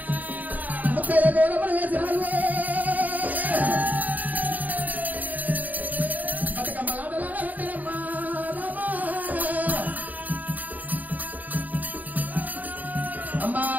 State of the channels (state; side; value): late; left; 0.079 ms